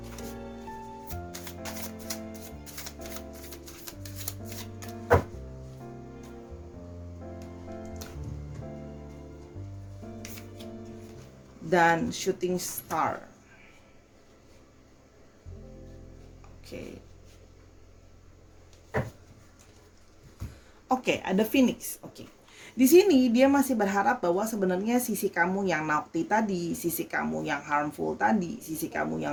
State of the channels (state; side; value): identical; both; correlation 1.00